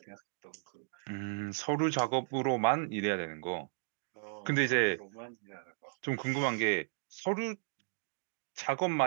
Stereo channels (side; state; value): left; silent; digital silence